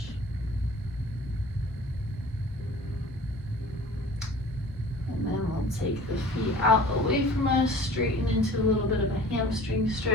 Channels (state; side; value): normal; both; correlation 0.45